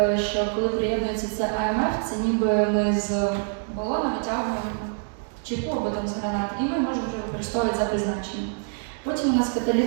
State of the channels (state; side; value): silent; left; 61 dB below the other